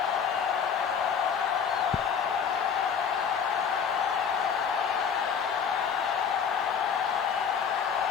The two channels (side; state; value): right; quieter; 6.9 dB